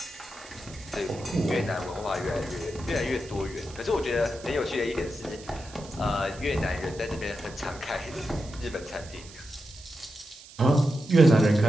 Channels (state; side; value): noise; right; hiss, 19 dB below the sound